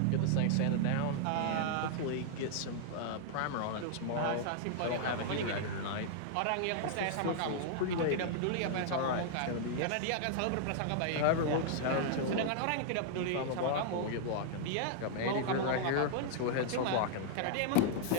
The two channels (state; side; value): different; both; correlation -0.01